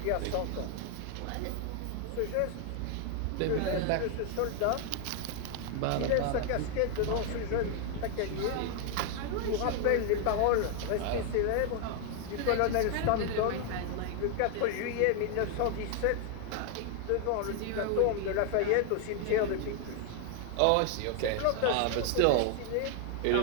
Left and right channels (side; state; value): both; different; correlation 0.00